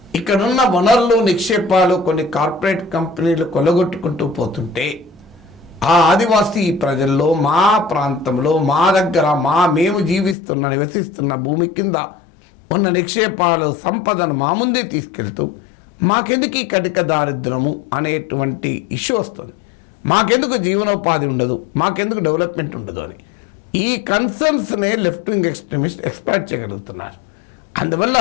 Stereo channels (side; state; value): right; drops out; at 10.4 s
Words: ఇక్కడున్న వనరులు, నిక్షేపాలు కొన్ని కార్పొరేట్ కంపెనీలు కొలగొట్టుకుంటూ పోతుంటే ఆ ఆదివాసీ ప్రజల్లో, మా ప్రాంతంలో, మా దగ్గర, మేము నివసిస్తున్న భూమి కింద ఉన్న నిక్షేపాలు, సంపదను మా ముందే తీసుకెళ్తూ మాకెందుకు ఈ కటిక దారిద్రము అనేటువంటి ఇష్యూ వస్తుంది. మాకెందుకు జీవనోపాధి ఉండదు, మాకెందుకు డెవలప్మెంట్ ఉండదు అని ఈ కన్సర్న్స్నే లెఫ్ట్ వింగ్ ఎక్స్ట్రీమిస్ట్ ఎక్స్ప్లాయిట్ చేయగలుగుతున్నారు. అందువల్ల